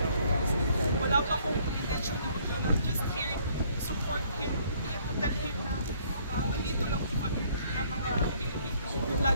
Wala pa akong intention na ulo na just here to support him and to tell him na nandito lang po kami ng mga Pilipino,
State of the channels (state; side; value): inverted; both; correlation -0.62